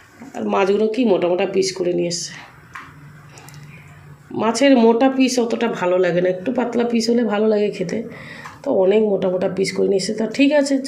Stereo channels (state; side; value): identical; both; correlation 1.00